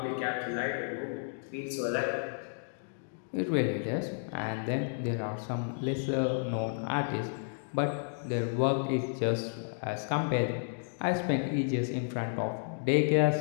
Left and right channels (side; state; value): right; silent; digital silence